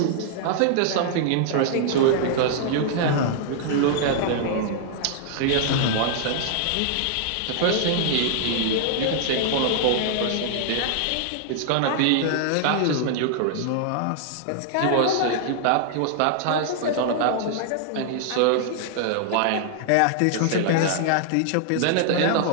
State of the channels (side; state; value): both; different; correlation -0.01